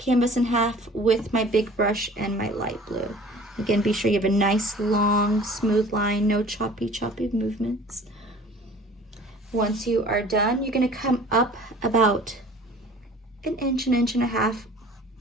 in half with my big brush and my light blue. Again, be sure you have a nice, long, smooth line, no choppy movements. Once you are done, you're going to come up about an inch and a half,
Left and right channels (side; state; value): both; normal; correlation 0.47